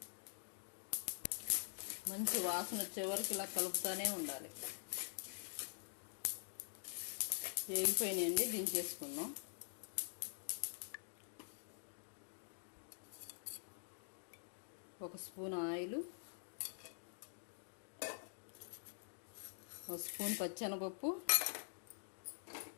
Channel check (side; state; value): right; silent; digital silence